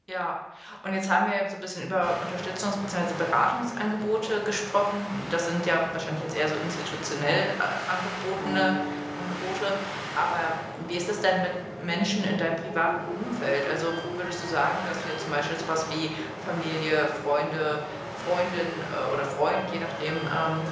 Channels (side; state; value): both; identical; correlation 1.00